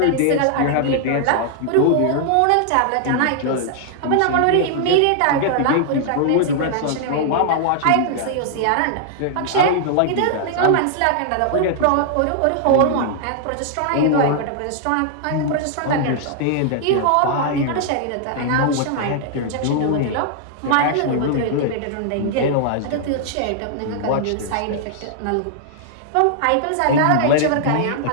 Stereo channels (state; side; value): different; both; correlation -0.01